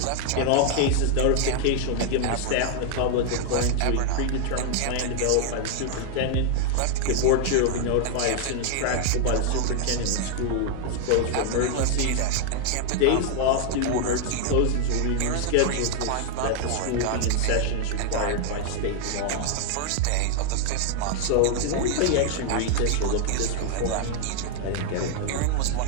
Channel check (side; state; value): both; different; correlation 0.00